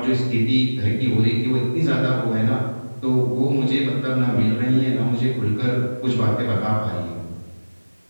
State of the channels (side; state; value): both; inverted; correlation -1.00